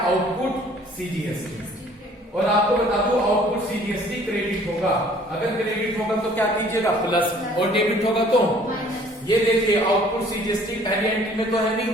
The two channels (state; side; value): normal; both; correlation 0.55